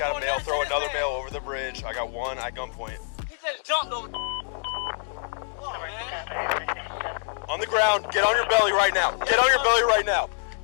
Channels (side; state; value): right; silent; digital silence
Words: got a male throw another male over the bridge. I got one at gunpoint. He just jumped over. On the ground. Get on your belly right now. Get on your belly right now.